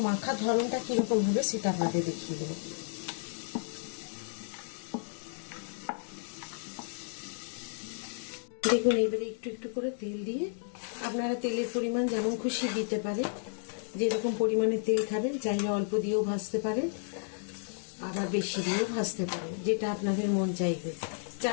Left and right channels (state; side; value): silent; right; digital silence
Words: মাখার ধরনটা কিরকম হবে সেটা আপনাদের দেখিয়ে দেবো। দেখুন এবারে একটু একটু করে তেল দিয়ে, আপনারা তেলের পরিমাণ যেমন খুশি দিতে পারেন, যেরকম পরিমাণে তেল খাবেন। চাইলে অল্প দিয়েও ভাজতে পারেন, আবার বেশি দিয়েও ভাজতে পারেন, যেটা আপনাদের মন চাইবে।